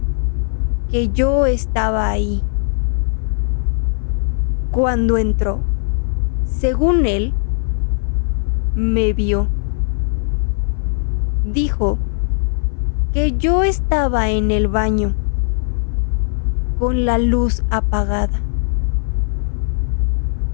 que yo estaba ahí. Cuando entró, según él, me vio. Dijo que yo estaba en el baño con la luz apagada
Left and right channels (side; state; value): right; silent; 57 dB below the other